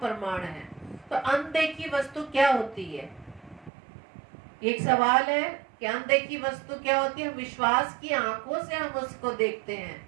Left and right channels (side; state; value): left; drops out; at 3.7 s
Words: है। तो अनदेखी वस्तु क्या होती है? एक सवाल है कि अनदेखी वस्तु क्या होती है? विश्वास की आंखों से हम उसको देखते